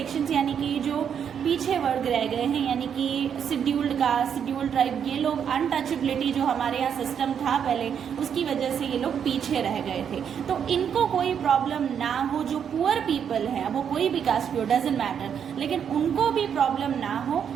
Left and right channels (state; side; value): quieter; left; 8.0 dB